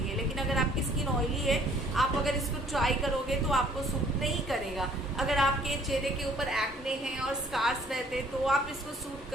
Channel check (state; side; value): normal; both; correlation 0.59